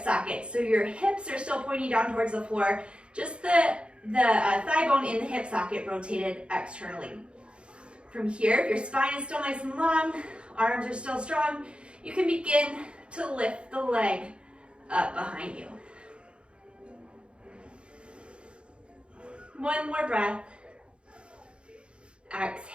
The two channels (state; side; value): late; left; 0.057 ms